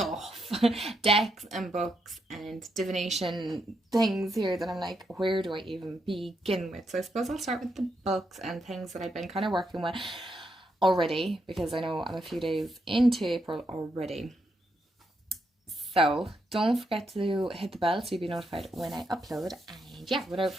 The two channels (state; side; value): normal; both; correlation 0.80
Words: decks and books and divination things here that I'm like, where do I even begin with? So I suppose I'll start with the books and things that I've been kind of working with already, because I know I'm a few days into April already. So don't forget to hit the bell so you'll be notified when I upload. And yeah, without